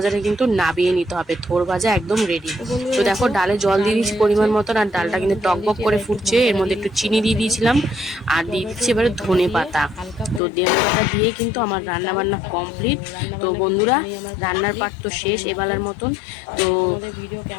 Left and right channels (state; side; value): drops out; right; at 10.4 s